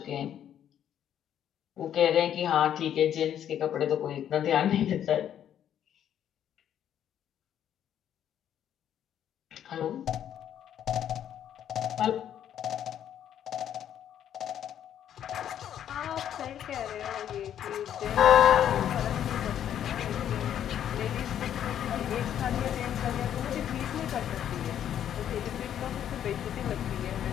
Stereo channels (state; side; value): quieter; right; 10.1 dB